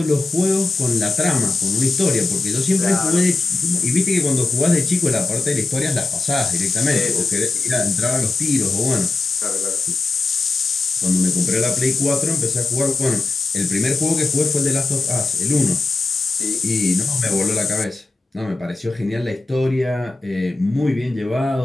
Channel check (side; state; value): right; quieter; 3.4 dB